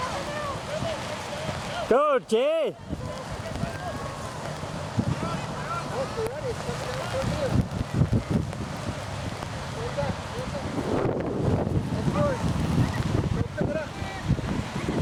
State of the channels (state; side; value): identical; both; correlation 1.00